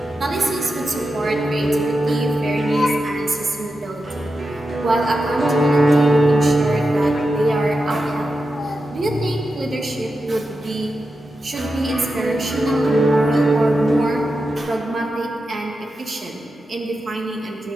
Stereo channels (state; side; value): normal; both; correlation 0.89